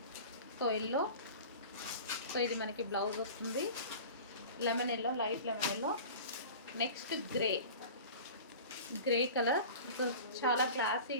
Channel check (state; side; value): inverted; both; correlation -0.38